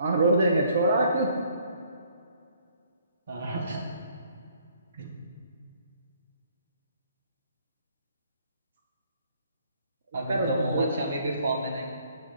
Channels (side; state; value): both; inverted; correlation -0.63